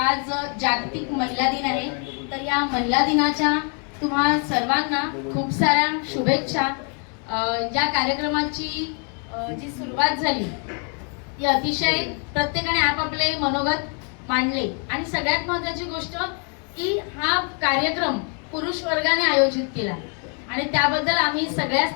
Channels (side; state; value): right; quieter; 39.7 dB